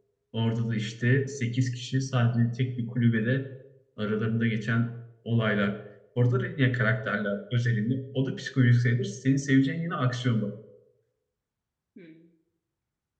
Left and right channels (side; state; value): both; identical; correlation 1.00